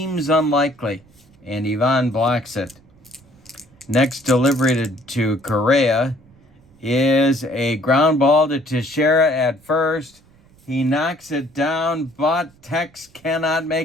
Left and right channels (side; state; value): right; noise; rumble, 29 dB below the sound